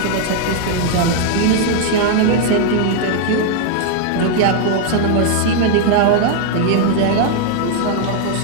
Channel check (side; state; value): both; different; correlation 0.00